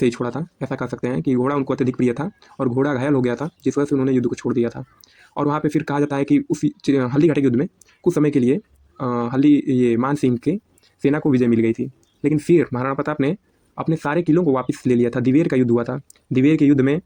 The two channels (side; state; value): both; identical; correlation 1.00